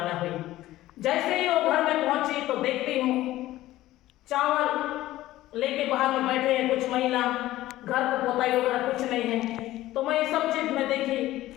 हुई। जैसे ही वो घर में पहुंची तो देखती हूँ चावल लेके बाहर में बैठे हैं कुछ महिला, घर को पोताई वगैरह कुछ नहीं है। तो मैं ये सब चीज में देखी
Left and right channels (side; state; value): right; quieter; 15.6 dB